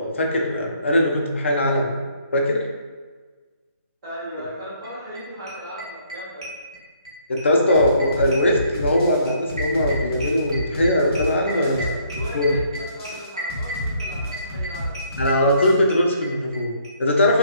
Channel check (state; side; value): inverted; both; correlation -0.66